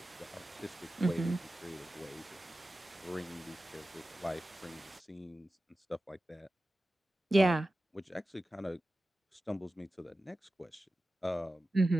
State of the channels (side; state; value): both; normal; correlation 0.94